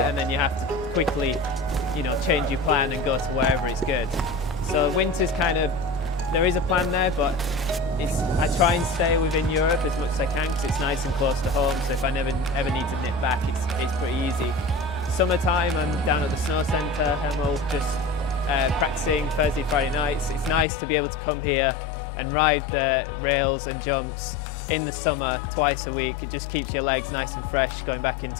and then you have to quickly, change your plan and go to wherever it's good. So winter's kind of, there is a plan there, but I try and stay within Europe as much as I can because it's nice and close to home, so if I ever need to nip back, it's pretty easy. Summertime, I'm down at the snow centre, Hemel, just practicing Thursday, Friday nights. It's nice to be able to come here and ride the rails and jumps in the summer twice a week. It just keeps your legs nice and fresh going back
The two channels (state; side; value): drops out; right; at 20.7 s